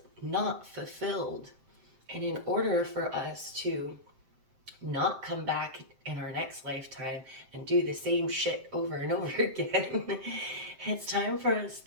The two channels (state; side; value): late; left; 7.6 ms